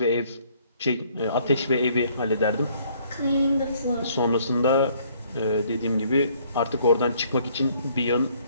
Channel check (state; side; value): inverted; both; correlation -0.63